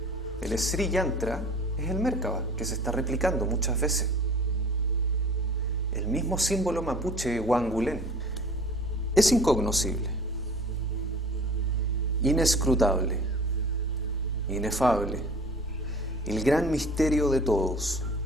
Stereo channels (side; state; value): both; normal; correlation 0.45